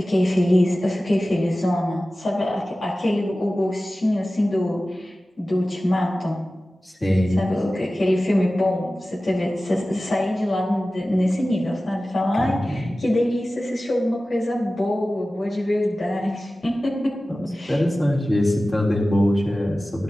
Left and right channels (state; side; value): normal; both; correlation 0.96